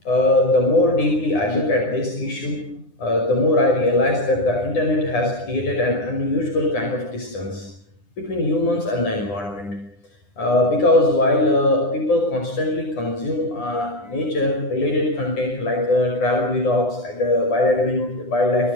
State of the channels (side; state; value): right; late; 9.8 ms